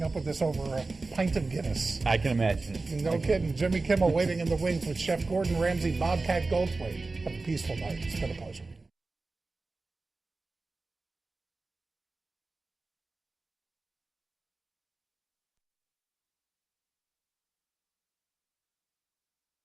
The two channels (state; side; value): quieter; left; 3.6 dB